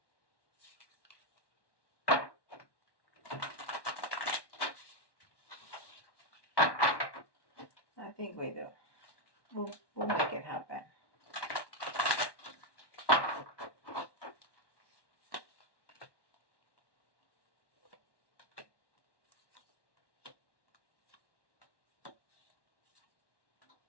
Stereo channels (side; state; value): right; late; 1.1 ms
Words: I think we do. We'll make it happen.